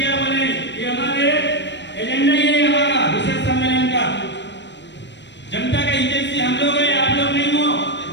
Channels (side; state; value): right; late; 0.52 ms